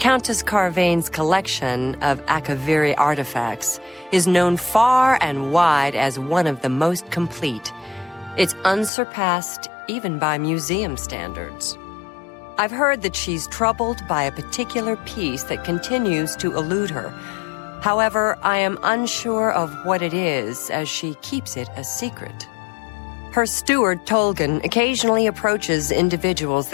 Carvane's collection of Akaviri artifacts is known far and wide as one of the most complete. It's unsurpassed even by museum standards. I've heard that she's troubled by a particular piece that continues to elude her. However, I am unsure of what it is, as she keeps it a secret. Her steward, Tolgan, occasionally approaches individuals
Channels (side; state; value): right; drops out; at 8.9 s